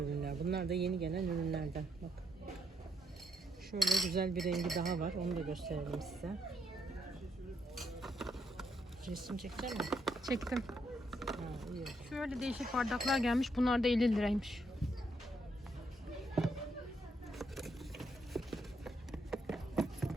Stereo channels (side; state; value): both; normal; correlation 0.76